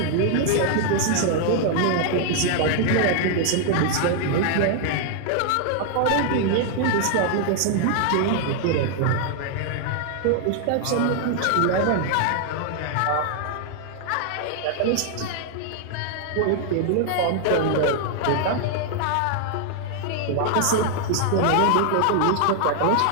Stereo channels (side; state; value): both; different; correlation 0.00